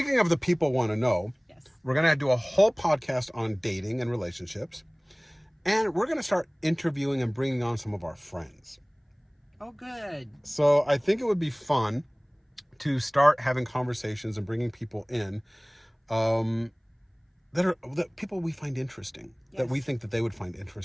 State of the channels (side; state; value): both; identical; correlation 1.00